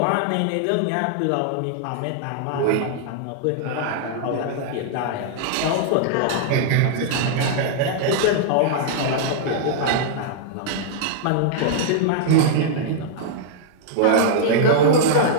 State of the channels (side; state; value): both; different; correlation -0.01